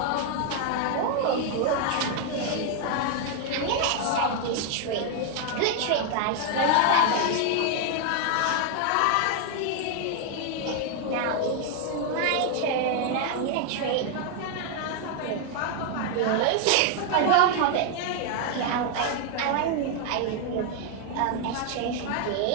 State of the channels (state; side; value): different; both; correlation 0.00